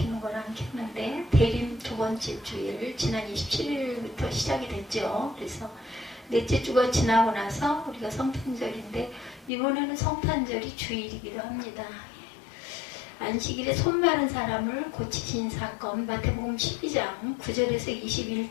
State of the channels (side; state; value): right; drops out; at 9.5 s